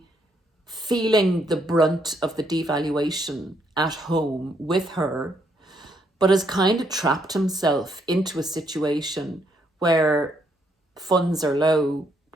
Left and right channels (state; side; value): normal; both; correlation 0.73